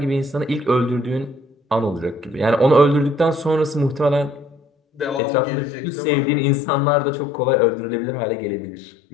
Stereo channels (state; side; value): drops out; right; at 5.2 s